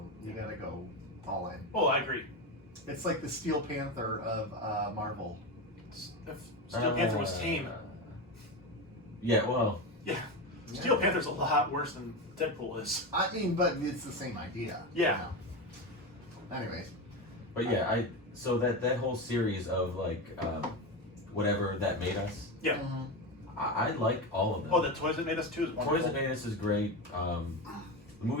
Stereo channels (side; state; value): both; normal; correlation 0.18